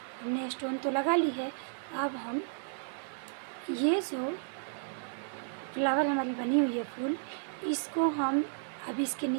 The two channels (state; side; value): silent; left; digital silence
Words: हमने स्टोन तो लगा ली है, अब हम ये जो फ्लावर हमारी बनी हुई है फूल, इसको हम अब इसके